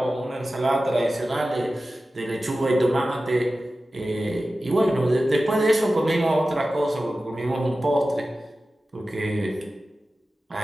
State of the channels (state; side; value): normal; both; correlation 0.95